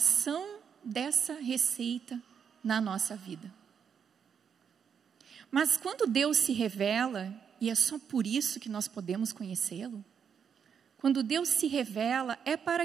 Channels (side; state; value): left; quieter; 7.3 dB